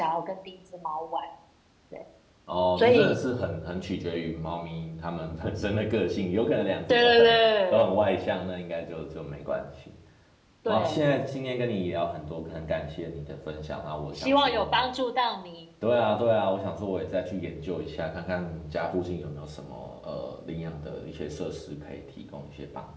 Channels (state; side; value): identical; both; correlation 1.00